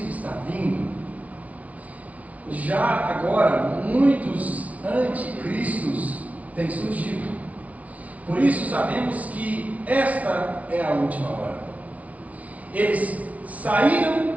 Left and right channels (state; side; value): late; left; 0.068 ms